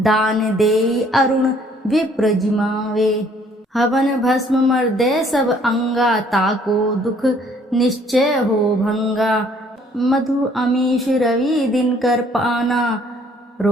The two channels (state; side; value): normal; both; correlation 0.61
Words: देई अरुण विप्र जिमावे। हवन भस्म मर्दे सब अंगा, ताको दुख निश्चय हो भंगा। मधु अमीश रवि दिन कर पाना,